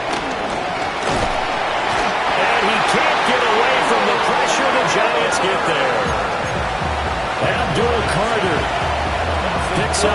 Can't get away from the pressure. The Giants get there. Abdul Carter picks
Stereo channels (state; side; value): identical; both; correlation 1.00